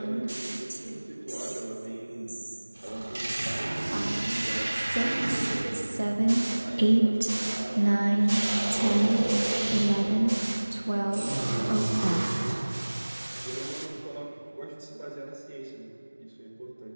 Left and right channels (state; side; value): inverted; both; correlation -1.00